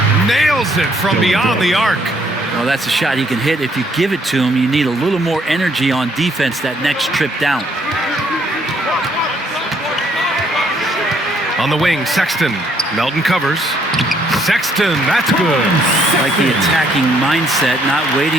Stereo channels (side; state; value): both; normal; correlation 0.67